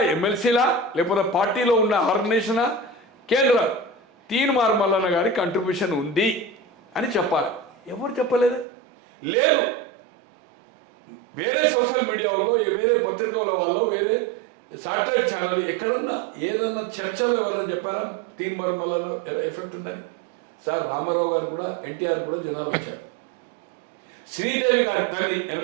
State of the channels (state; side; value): drops out; left; at 8.7 s